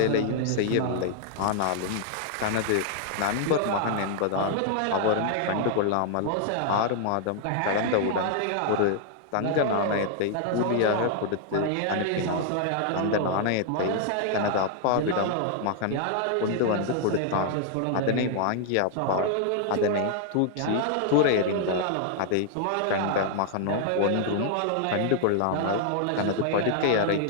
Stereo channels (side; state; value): both; different; correlation 0.00